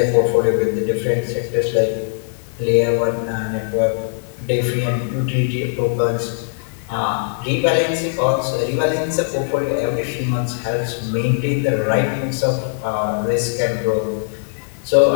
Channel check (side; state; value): right; silent; 62 dB below the other